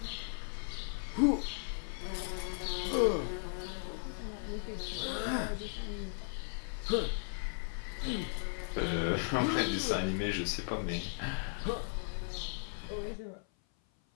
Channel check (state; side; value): silent; right; 53 dB below the other